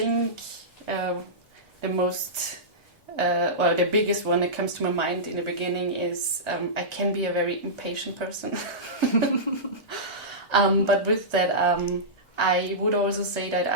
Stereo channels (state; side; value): normal; both; correlation -0.16